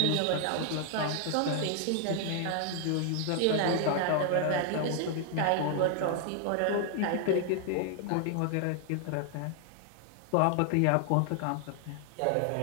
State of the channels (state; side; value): different; both; correlation 0.00